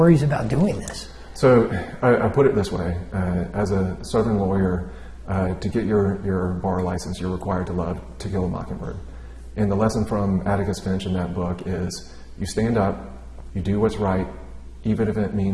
about doing this? So I put it this way. As a Southern lawyer, to get your bar license, you're required to love To Kill a Mockingbird. And the lesson from Atticus Finch in that book is, you stand up, you do what's right, even if it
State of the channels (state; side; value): identical; both; correlation 1.00